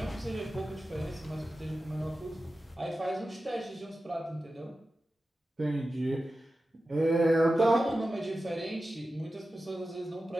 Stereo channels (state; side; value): normal; both; correlation 0.93